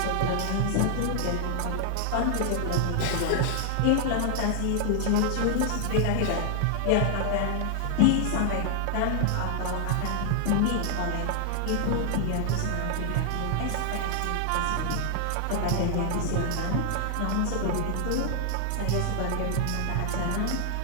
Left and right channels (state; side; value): different; both; correlation 0.00